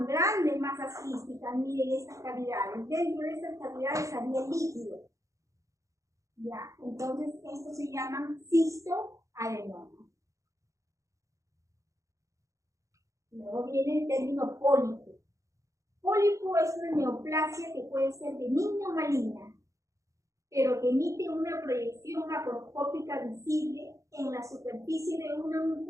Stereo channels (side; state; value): left; late; 0.15 ms